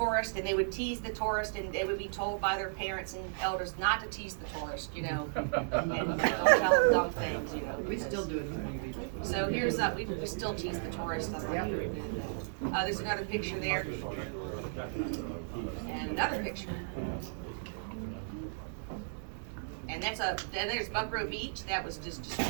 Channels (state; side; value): silent; left; digital silence